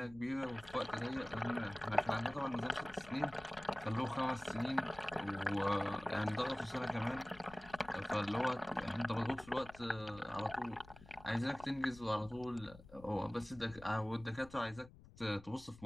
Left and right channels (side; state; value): left; noise; rumble, 19 dB below the sound